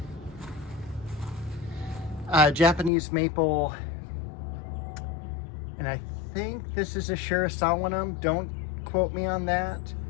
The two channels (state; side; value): drops out; right; at 2.9 s